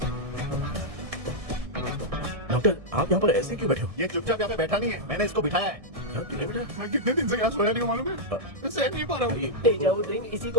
डॉक्टर आप यहाँ पर ऐसे क्यों बैठे हो? ये चुपचाप यहाँ पे बैठा नहीं है, मैंने इसको बिठाया है। नहीं बेटा, मैं कितने दिन से यहाँ सोया नहीं हूँ मालूम है? मैं सहन नहीं पा रहा हूँ। डेजा वू ड्रीम इसी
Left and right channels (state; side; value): late; left; 1.7 ms